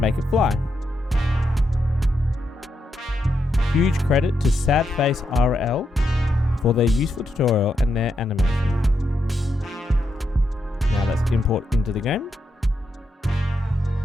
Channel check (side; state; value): both; normal; correlation 0.83